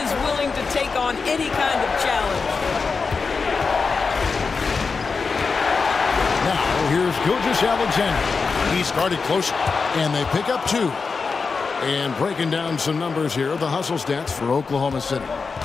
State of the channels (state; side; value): quieter; right; 4.8 dB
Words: willing to take on any kind of challenge. Now, here's Gilgeous-Alexander. He started close, and they pick up two. And breaking down some numbers here, the hustle stats for Oklahoma City.